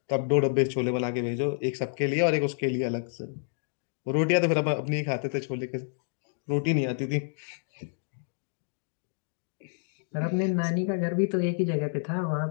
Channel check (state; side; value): silent; right; digital silence